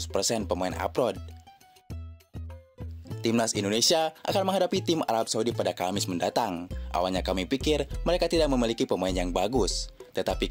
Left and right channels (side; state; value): both; identical; correlation 1.00